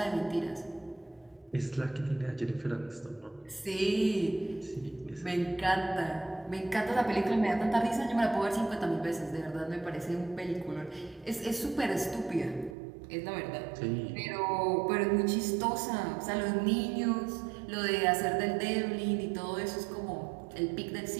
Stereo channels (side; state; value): left; drops out; at 12.8 s